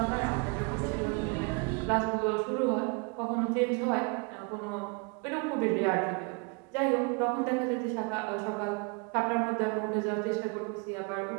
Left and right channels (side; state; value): left; quieter; 32.9 dB